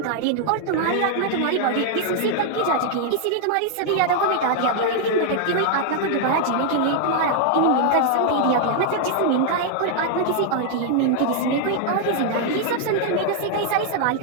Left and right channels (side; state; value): both; different; correlation 0.00